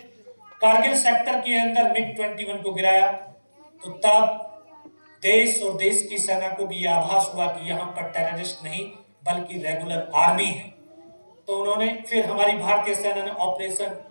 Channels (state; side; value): inverted; both; correlation -1.00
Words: कारगिल सेक्टर के अंदर MiG-21 को गिराया, तो तब देश और देश की सेना को भी आभास हुआ कि यहाँ पर टेररिस्ट नहीं बल्कि रेगुलर आर्मी है। तो उन्होंने फिर हमारी भारतीय सेना ने ऑपरेशन